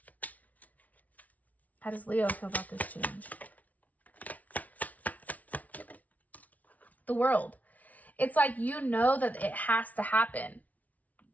How does Leo feel about this change? The World. It's like you know that it has to happen.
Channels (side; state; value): right; late; 0.072 ms